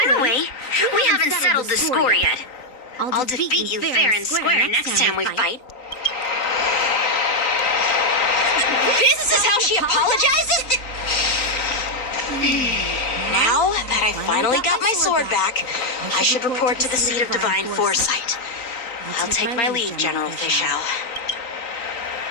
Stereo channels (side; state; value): right; late; 3.9 ms